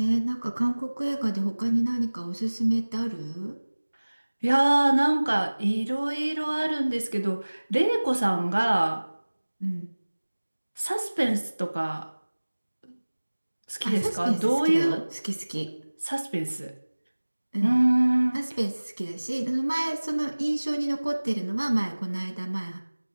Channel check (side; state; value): both; inverted; correlation -1.00